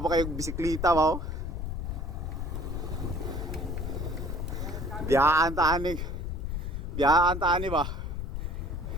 pa kayo bisikleta ba? Oh? Biyaan taani ba?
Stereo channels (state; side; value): noise; left; rumble, 4 dB below the sound